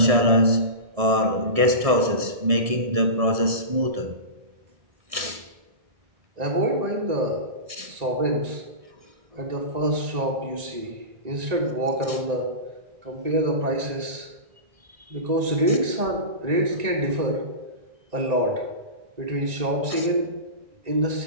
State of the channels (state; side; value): late; left; 1.6 ms